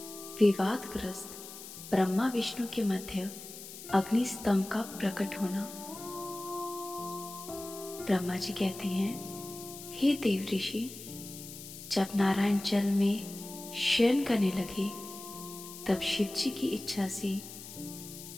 विवादग्रस्त ब्रह्मा विष्णु के मध्य अग्नि स्तंभ का प्रकट होना। ब्रह्मा जी कहते हैं, हे देव ऋषि, जब नारायण जल में शयन करने लगे तब शिव जी की इच्छा से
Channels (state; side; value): noise; left; hiss, 13 dB below the sound